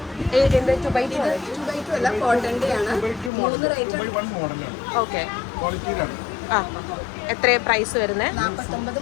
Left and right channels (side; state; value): right; drops out; at 3.3 s